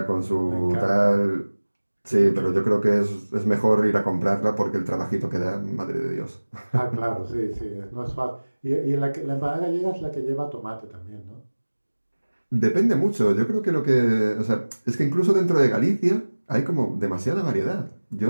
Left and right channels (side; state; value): both; inverted; correlation -1.00